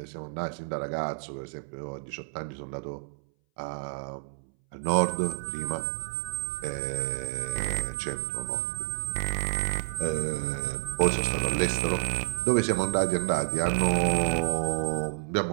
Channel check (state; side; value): silent; left; 58 dB below the other